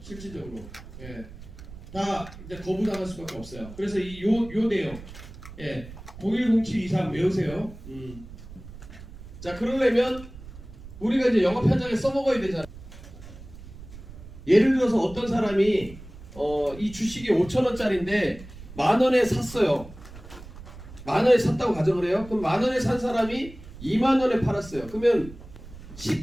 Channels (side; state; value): right; noise; rumble, 16 dB below the sound